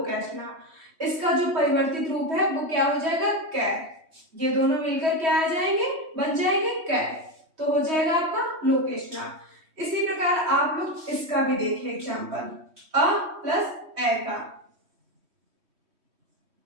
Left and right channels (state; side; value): late; left; 3.1 ms